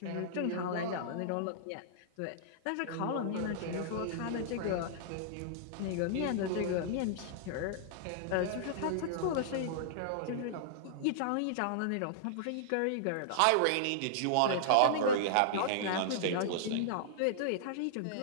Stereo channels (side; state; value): both; different; correlation -0.01